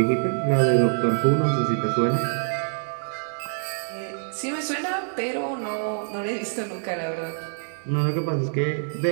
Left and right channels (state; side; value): silent; left; digital silence